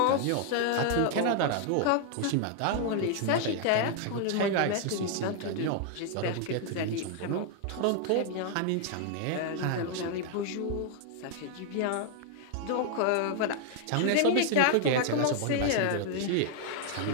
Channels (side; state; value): both; different; correlation 0.00